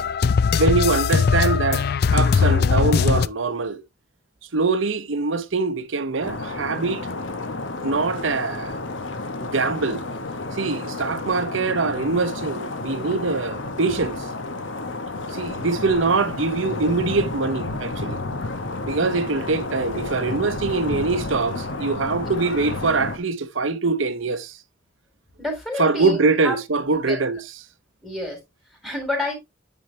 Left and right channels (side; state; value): both; normal; correlation 0.06